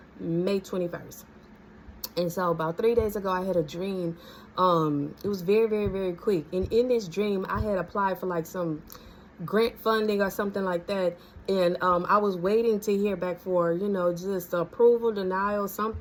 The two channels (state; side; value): identical; both; correlation 1.00